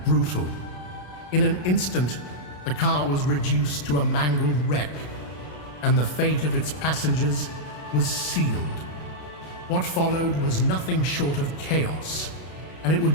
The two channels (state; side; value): late; right; 33 ms